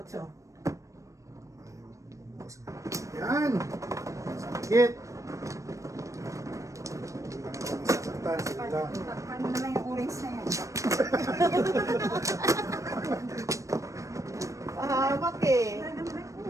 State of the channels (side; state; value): left; late; 0.15 ms